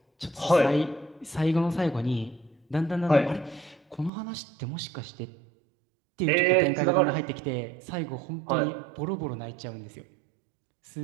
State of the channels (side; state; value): left; drops out; at 4.1 s